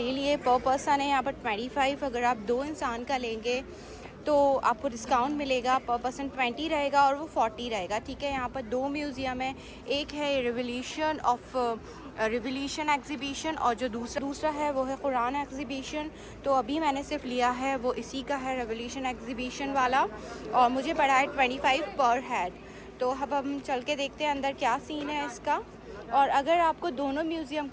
लिए। पर पर्सन है यहाँ पर 25। अगर आप 2 इंसान का लेंगे तो आपको डिस्काउंट मिलेगा। पर पर्सन 20 रहेगा और वो 40 रहेगा। ठीक है, यहाँ पर 2 म्यूज़ियम है, एक है रिवोल्यूशन एग्जीबिशन और जो दूसरा है वो है कुरान एग्जीबिशन। तो अभी मैंने सिर्फ लिया है वो इसी का है, रिवोल्यूशन एग्जीबिशन वाला, और मुझे पड़ा है 25 पर हेड। तो अब हम चल के देखते हैं अंदर क्या सीन है इसका। और अगर आपको दोनों म्यूज़ियम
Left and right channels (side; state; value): both; identical; correlation 1.00